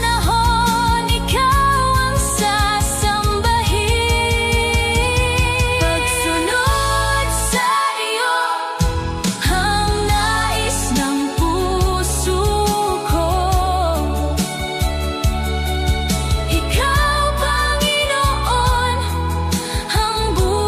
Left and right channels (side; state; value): both; identical; correlation 1.00